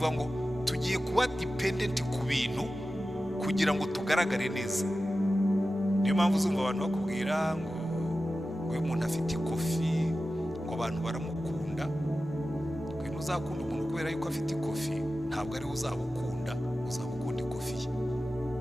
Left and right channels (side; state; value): both; normal; correlation 0.94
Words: ngo tugiye kuba dependent ku bintu kugira ngo tugaragare neza. Niyo mpamvu uzumva abantu bakubwira ngo uyu muntu afite ikofi, ngo abantu baramukunda. Kwino uzakunda umuntu kubera yuko afite ikofi, ntabwo ari uzabukunda, uzabukunda ikofi ye.